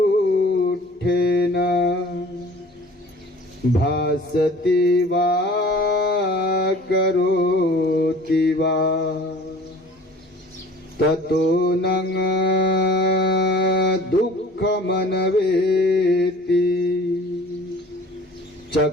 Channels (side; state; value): both; normal; correlation 0.47